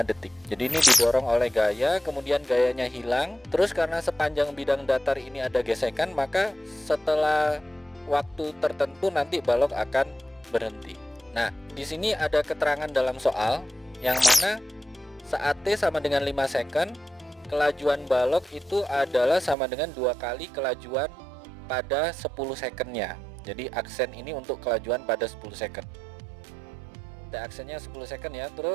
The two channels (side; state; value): left; drops out; at 19.6 s